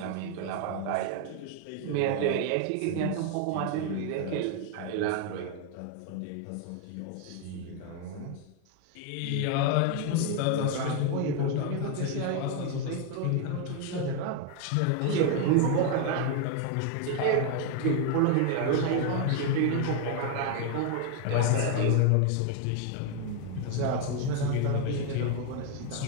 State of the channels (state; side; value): different; both; correlation 0.01